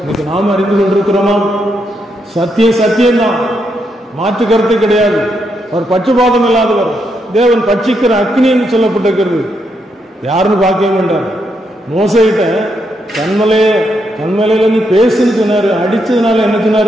இன்னைக்கு நாம் அறிந்து கொண்டிருக்கிறோமா? சத்தியம் சத்தியம்தான், மாற்று கருத்து கிடையாது. அவர் பட்சபாதம் இல்லாதவர், தேவன் பட்சிக்கிற அக்னி என்று சொல்லப்பட்டிருக்கிறது. யாருன்னு பார்க்கவே மாட்டார். மோசைகிட்ட கண்மலையில நீ பேசுன்னு சொன்னாரு. அடிச்சதுனால என்ன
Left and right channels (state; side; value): normal; both; correlation 0.80